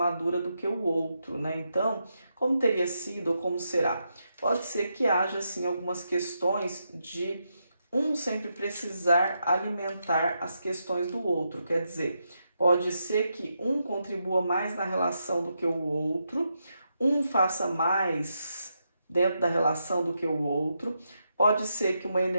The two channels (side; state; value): both; inverted; correlation -0.83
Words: do que o outro, né? Então, como teria sido ou como será? Pode ser que haja, assim, algumas questões de um sempre precisar alimentar as questões do outro. Quer dizer, pode ser que um contribua mais na relação do que o outro, um faça mais dentro da relação do que o outro. Pode ser que uma